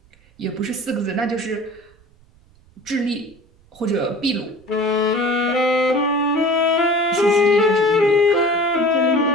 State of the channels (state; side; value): noise; right; rumble, 30 dB below the sound